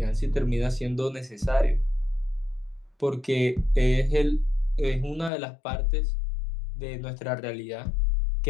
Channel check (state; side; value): drops out; right; at 5.3 s